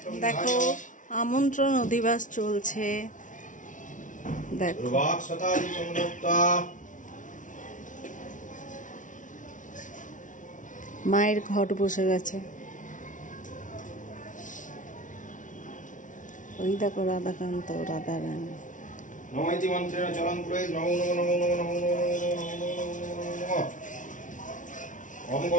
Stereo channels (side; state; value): right; late; 0.37 ms